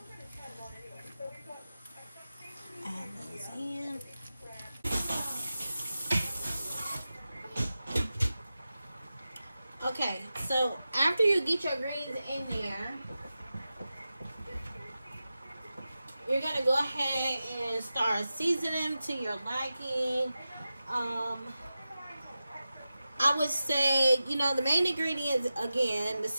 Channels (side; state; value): both; inverted; correlation -0.93